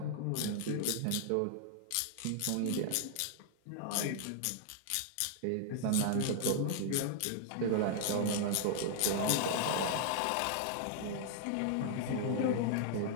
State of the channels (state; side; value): different; both; correlation 0.00